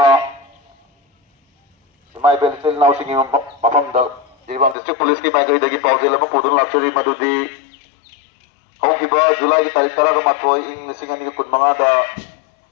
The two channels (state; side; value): drops out; right; at 4.8 s